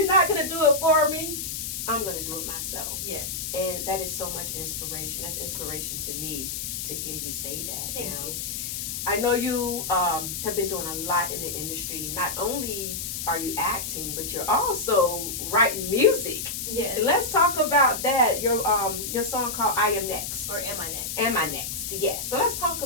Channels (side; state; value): left; noise; hiss, 4 dB below the sound